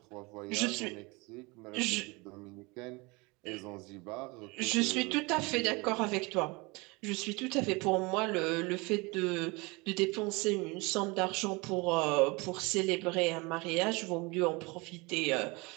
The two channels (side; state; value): left; quieter; 26.2 dB